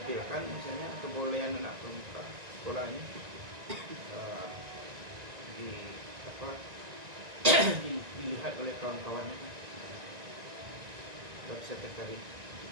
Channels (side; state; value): left; late; 1.9 ms